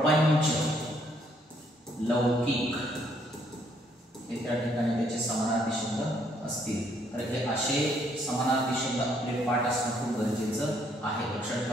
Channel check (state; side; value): normal; both; correlation 0.68